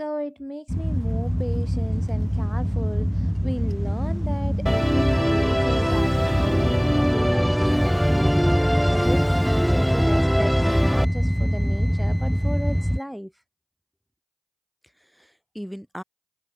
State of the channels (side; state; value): both; identical; correlation 1.00